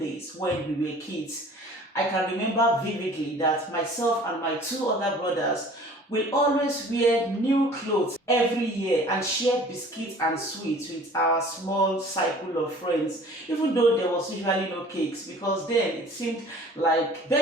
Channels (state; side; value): normal; both; correlation 0.48